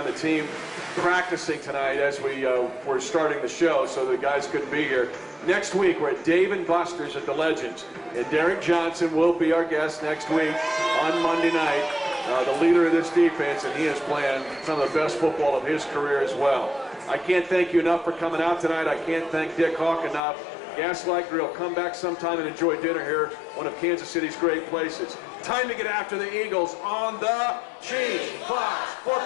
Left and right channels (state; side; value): drops out; right; at 20.2 s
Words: The team practicing tonight as we're starting the show, so the guys couldn't be here. Next week, we're at Dave & Buster's at the Legends. And Derek Johnson will be our guest next week on Monday night, the leader of this defense, and he is playing some of the best football of his career as well. I can't thank you enough for coming out tonight. I can't thank Dick Hawk enough. Gaslight Grill, come back sometime and enjoy dinner here, one of Kansas City's great places. Time to get after the Eagles on the Chiefs Fox